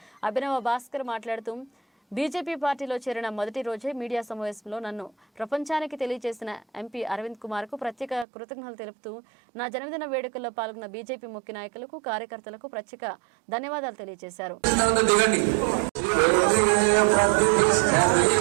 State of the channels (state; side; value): drops out; left; at 8.2 s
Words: అభినవ్ భాస్కర్ మాట్లాడుతూ బీజేపీ పార్టీలో చేరిన మొదటి రోజే మీడియా సమావేశంలో నన్ను ప్రపంచానికి తెలియజేసిన ఎంపీ అరవింద్ కుమార్కు ప్రత్యేక కృతజ్ఞతలు తెలుపుతూ నా జన్మదిన వేడుకల్లో పాల్గొన్న బీజేపీ ముఖ్య నాయకులకు కార్యకర్తలకు ప్రత్యేక ధన్యవాదాలు తెలియజేశారు.